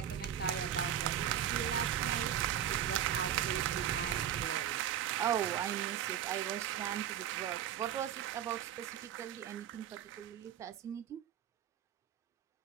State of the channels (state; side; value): quieter; left; 10.2 dB